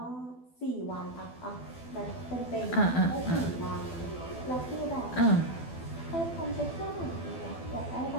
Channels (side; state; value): right; late; 12 ms